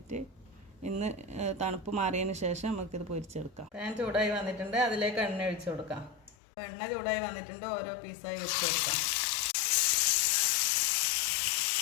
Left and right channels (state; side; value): drops out; right; at 6.4 s